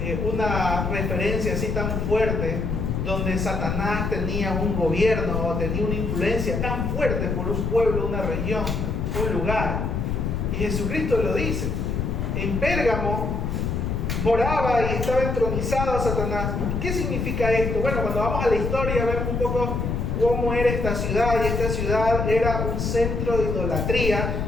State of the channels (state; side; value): noise; left; rumble, 1 dB below the sound